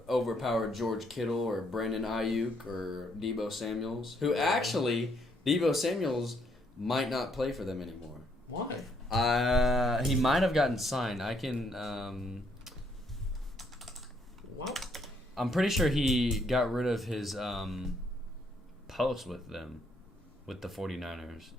overpowered George Kittle or Brandon Ayuk or Deebo Samuels, who actually, Deebo Samuels might not play for them anymore. Why? He might have gotten signed. I can... What? I'm pretty sure he got rid of his post with them, with the 49ers.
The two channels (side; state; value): both; normal; correlation 0.71